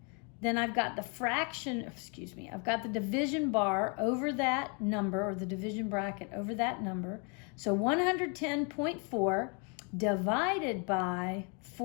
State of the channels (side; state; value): right; quieter; 35.6 dB